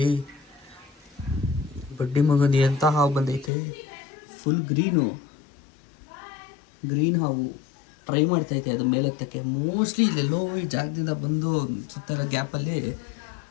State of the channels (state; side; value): drops out; right; at 3.5 s